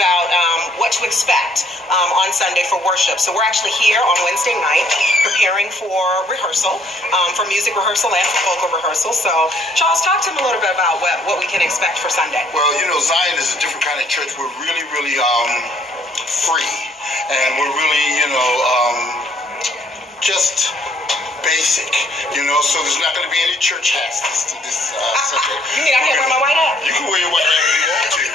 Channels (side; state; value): both; normal; correlation 0.64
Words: what to expect on Sunday for worship. So we're actually here on Wednesday night preparing for rehearsal, for music rehearsal and for vocal rehearsal. So Charles, talk to them a little bit about what we can expect for Sunday. Well, you know, Zion is a different kind of church. We're really, really free. And we're really, just basic, so there's not going to be any church hats this Sunday. You mean I can't wear my white hat? You can wear your white hat if you want to.